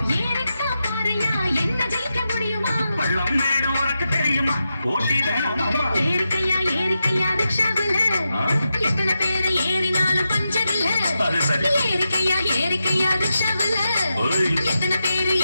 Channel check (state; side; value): inverted; both; correlation -0.88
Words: ஏறிக்கா பாறையா என்ன ஜெயிக்க முடியுமா? பள்ளம் மேடு உனக்கு தெரியுமா? போட்டி வேணாமம்மா. ஏறிக்கையா ஏறிக்கையா ரிக்ஷாவில் எத்தனை பேரு ஏறினாலும் பஞ்சர் இல்ல. அது சரி. ஏறிக்கையா ஏறிக்கையா ரிக்ஷாவில் எத்தனை பேரு